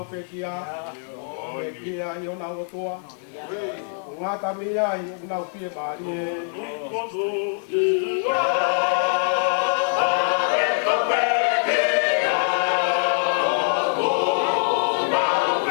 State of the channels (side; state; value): right; silent; digital silence